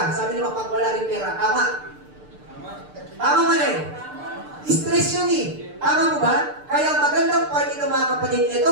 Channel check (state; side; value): late; left; 6.7 ms